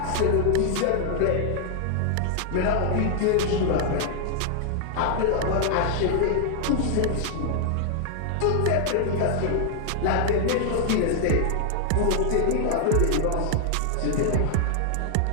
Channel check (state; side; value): different; both; correlation 0.00